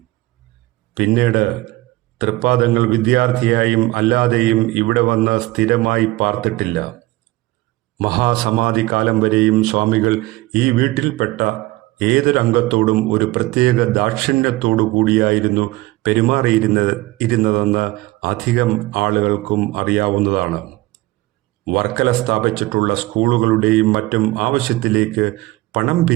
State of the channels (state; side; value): quieter; left; 19.5 dB